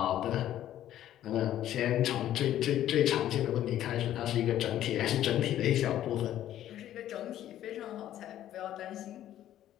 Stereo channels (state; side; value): quieter; right; 12.2 dB